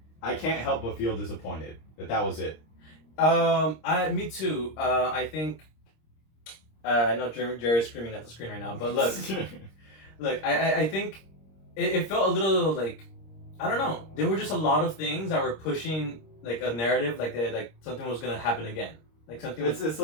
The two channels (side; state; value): right; late; 26 ms